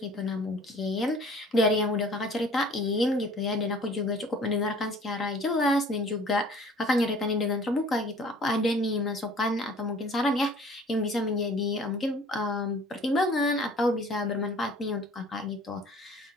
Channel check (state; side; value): normal; both; correlation 0.50